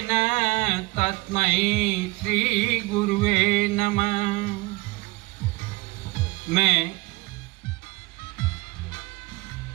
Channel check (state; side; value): quieter; left; 23.4 dB